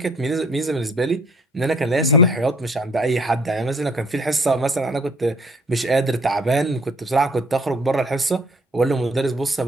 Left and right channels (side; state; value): both; normal; correlation 0.58